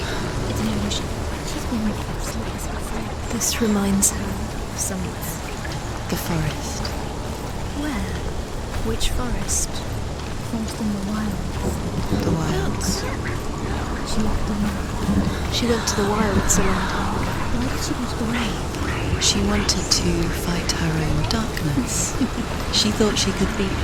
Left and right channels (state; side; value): identical; both; correlation 1.00